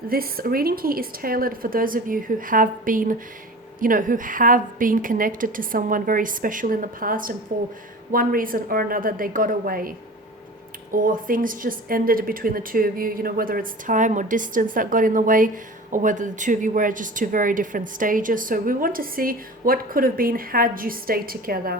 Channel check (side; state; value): both; normal; correlation 0.37